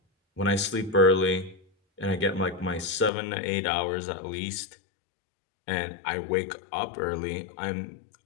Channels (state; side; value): drops out; right; at 3.1 s